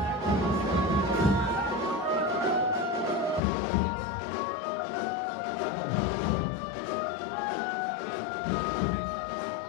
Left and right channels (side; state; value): right; drops out; at 3.4 s